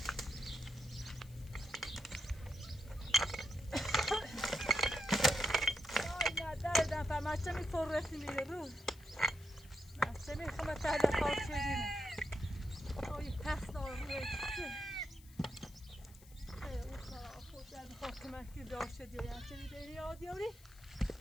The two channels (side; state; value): left; noise; hiss, 23 dB below the sound